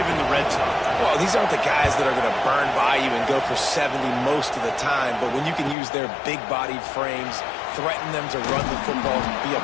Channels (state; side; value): drops out; right; at 5.8 s